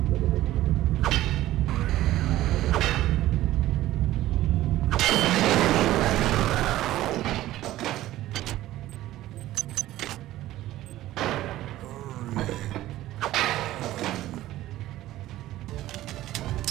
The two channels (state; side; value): quieter; left; 15.1 dB